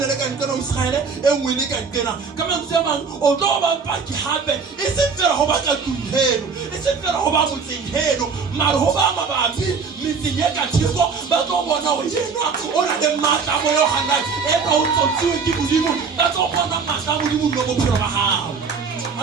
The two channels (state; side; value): quieter; left; 5.3 dB